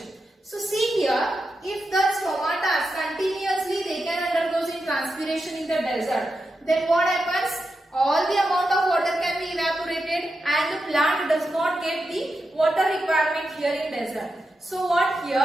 So see here, if the stomata continuously they can undergo in transpiration in the desert, then what happens? All the amount of water can be evaporated and the plant does not get the water requirement here in desert. So what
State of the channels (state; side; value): normal; both; correlation 0.88